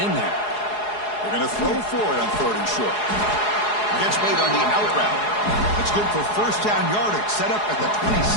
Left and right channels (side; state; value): right; late; 4.8 ms